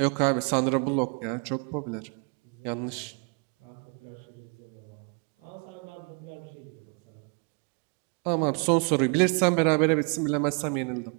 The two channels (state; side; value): quieter; left; 37.8 dB